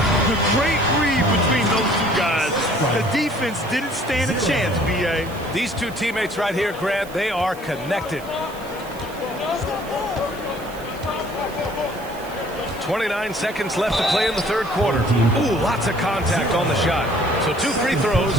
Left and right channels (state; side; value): noise; right; hiss, 20 dB below the sound